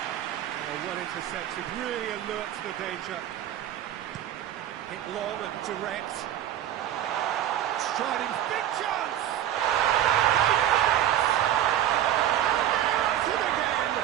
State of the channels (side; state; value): left; quieter; 11.6 dB